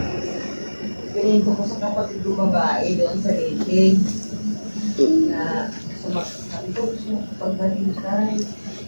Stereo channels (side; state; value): both; inverted; correlation -1.00